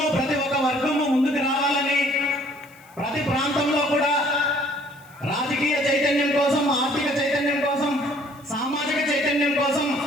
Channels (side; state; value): left; noise; hiss, 28 dB below the sound